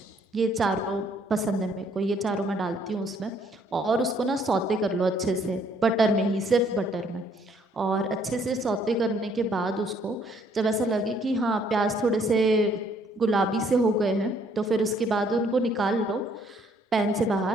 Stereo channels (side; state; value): both; normal; correlation 0.65